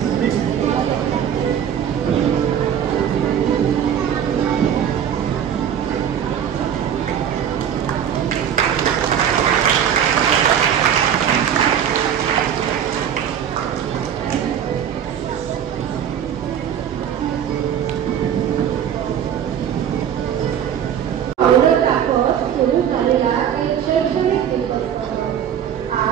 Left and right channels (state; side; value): quieter; left; 9.1 dB